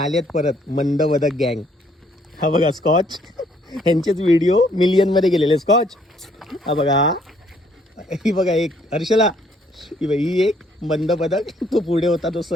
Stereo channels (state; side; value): normal; both; correlation 0.66